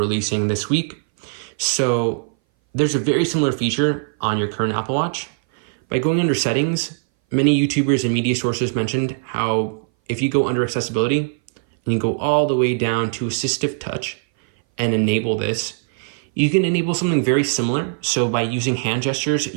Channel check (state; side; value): silent; left; 60 dB below the other